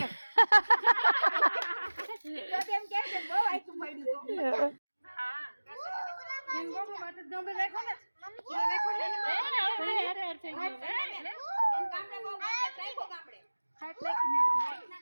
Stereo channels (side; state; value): both; inverted; correlation -1.00